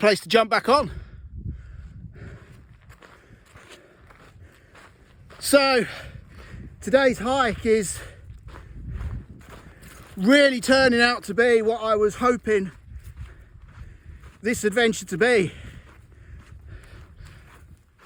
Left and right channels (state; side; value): identical; both; correlation 1.00